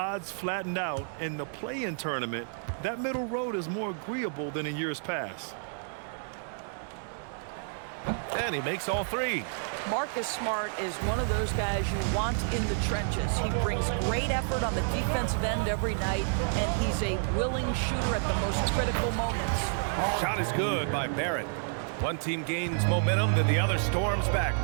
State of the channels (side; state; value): left; silent; 58 dB below the other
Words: flattened out in the play-in tournament, that middle road is more agreeable than in years past. And he makes all 3. Marcus Smart is one of those guys you want in the trenches. He brings great effort on the defensive end every night, and he's a willing shooter at the most critical moments. Shot is good by Barrett. One team gains momentum, then the other storms back.